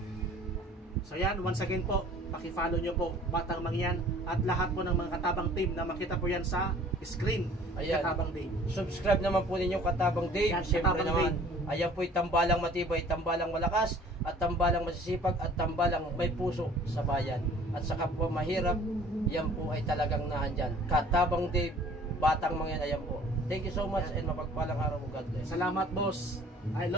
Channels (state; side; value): normal; both; correlation 0.51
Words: So yan, once again po, paki-follow nyo po Batang Mangyan at lahat po ng mga Katabang team na makita po yan sa screen. Ayan. Katabang Dave, subscribe naman po ninyo Katabang Dave. Yan, siyempre naman Dave. Ayan po'y tambalang matibay, tambalang malakas, at tambalang masisipag, at tambalang may puso sa bayan. At sa kapwa mahirap, yan po ay talagang naandyan. Katabang Dave, Batang Mangyan, ayan po. Thank you so much and mapagpalang araw mo, God bless. Salamat boss. I